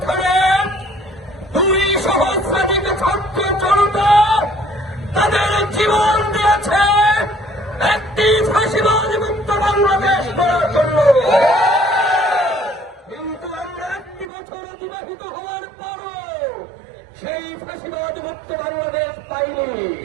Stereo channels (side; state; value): left; drops out; at 14.2 s